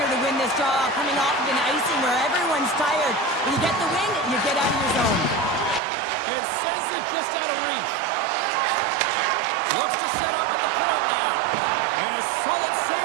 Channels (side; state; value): left; drops out; at 5.8 s